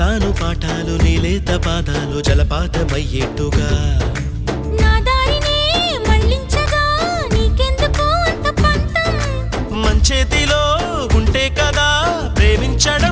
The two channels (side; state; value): both; identical; correlation 1.00